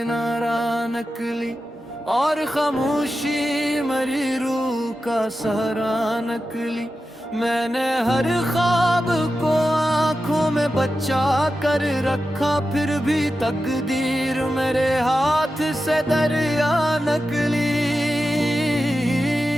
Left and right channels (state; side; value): normal; both; correlation 0.91